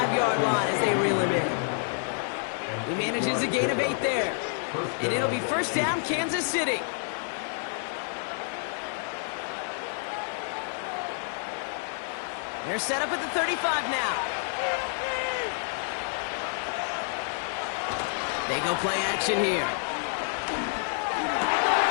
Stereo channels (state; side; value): silent; right; 59 dB below the other